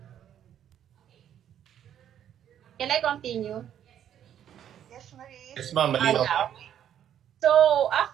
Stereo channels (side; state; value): left; quieter; 10.1 dB